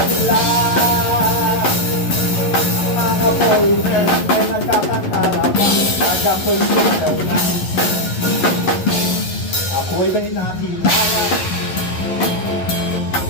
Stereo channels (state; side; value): late; right; 11 ms